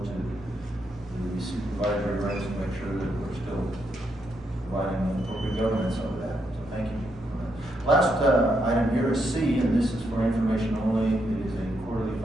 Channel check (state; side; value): normal; both; correlation 0.79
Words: to the supervisory ranks to make sure that we're still providing appropriate governance over that. So thank you. Last item here is C, and this is for information only. It is a quarterly